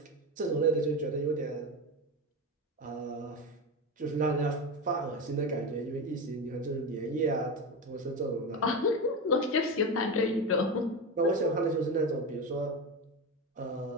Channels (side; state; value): both; normal; correlation 0.19